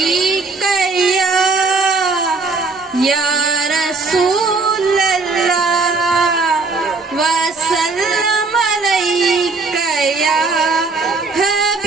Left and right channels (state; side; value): quieter; left; 3.9 dB